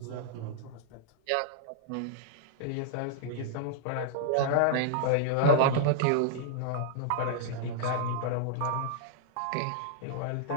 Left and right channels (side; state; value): both; different; correlation -0.01